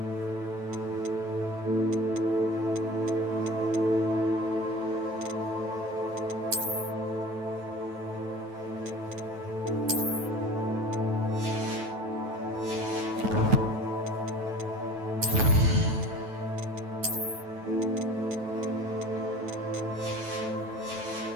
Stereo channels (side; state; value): left; late; 9.2 ms